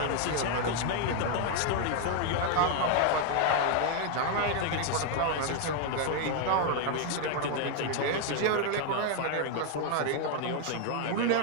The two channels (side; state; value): both; different; correlation 0.00